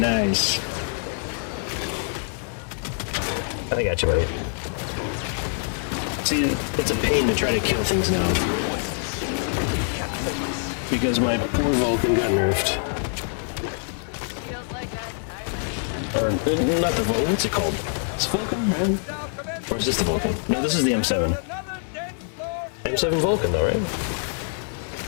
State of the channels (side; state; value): right; silent; digital silence